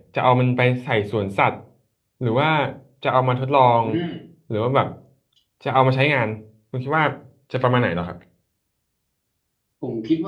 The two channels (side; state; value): both; identical; correlation 1.00